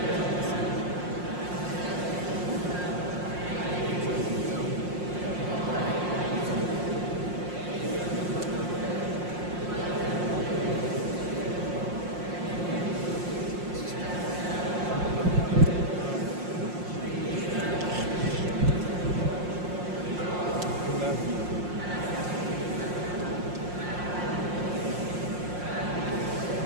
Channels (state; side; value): late; left; 5.6 ms